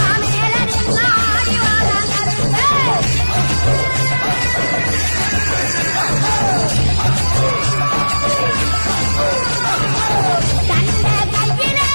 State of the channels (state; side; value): inverted; both; correlation -1.00